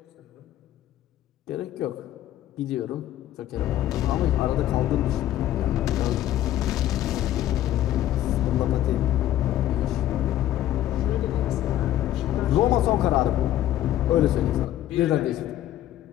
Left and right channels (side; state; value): right; quieter; 13.0 dB